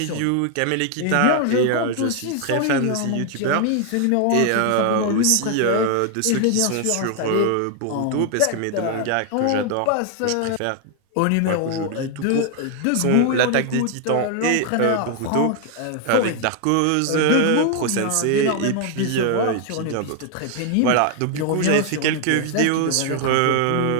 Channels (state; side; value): different; both; correlation 0.00